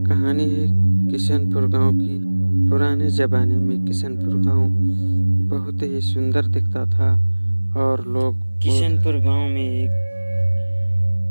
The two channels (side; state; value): both; inverted; correlation -1.00